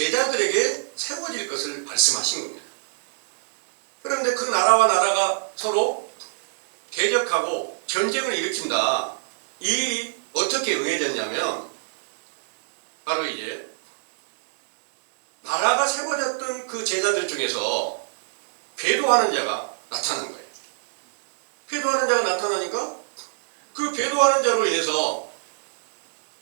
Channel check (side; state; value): left; silent; digital silence